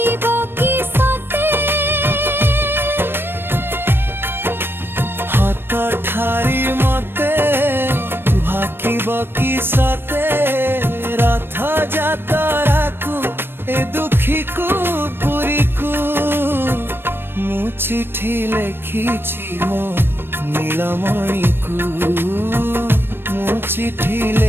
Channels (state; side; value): late; left; 0.10 ms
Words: কি সতে হাত ঠারি মতে ভাকিব কি সতে রথ যাতরাকু এ দুঃখীকু পুরীকু মু চিঠি লেখিছি মো নীলমণিকু মু চিঠি